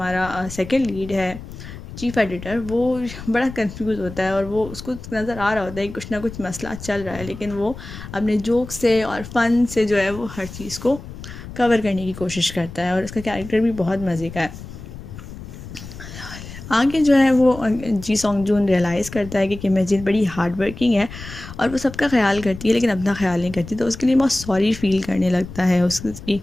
सेकंड लीड है चीफ़ एडिटर, वो बड़ा कंफ्यूज होता है और वो उसको नज़र आ रहा होता है कि कुछ ना कुछ मसला चल रहा है, लेकिन वो अपने जोक से और फ़न से जो है वो हर चीज़ को कवर करने की कोशिश करता है। और उसका कैरेक्टर भी बहुत मज़े का है। आगे जो है वो जी सॉन्गजून रियलाइज़ करता है कि किम हेजिन बड़ी हार्ड वर्किंग है और वो सबका ख्याल करती है लेकिन अपना ख्याल नहीं करती, तो उसके लिए बहुत सॉरी फील करने लगता है उसकी।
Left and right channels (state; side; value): noise; left; rumble, 13 dB below the sound